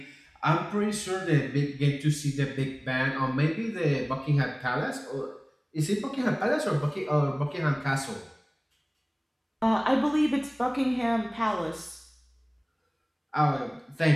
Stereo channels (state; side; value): identical; both; correlation 1.00